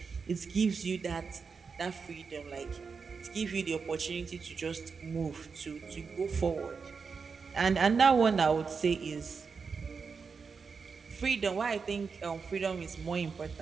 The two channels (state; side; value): quieter; left; 5.3 dB